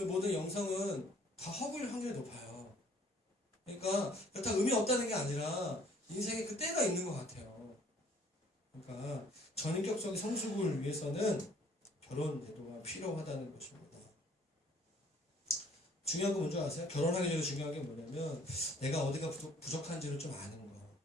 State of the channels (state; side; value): normal; both; correlation 0.58